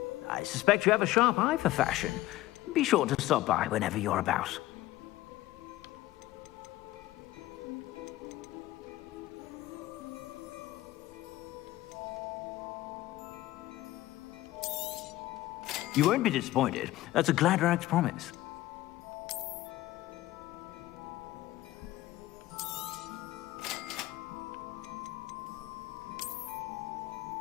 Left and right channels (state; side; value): quieter; right; 16.4 dB